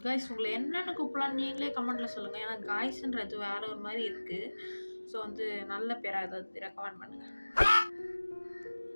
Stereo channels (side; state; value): both; inverted; correlation -1.00